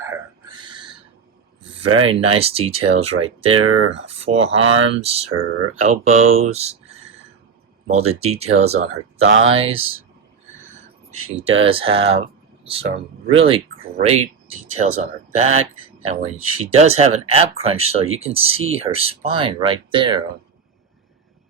Very nice details right there. Forearms, her elbows, molded details on her thighs. She does have some really great details on her back. And when she does have an ab crunch, so you can see her spine right there.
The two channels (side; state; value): left; quieter; 5.9 dB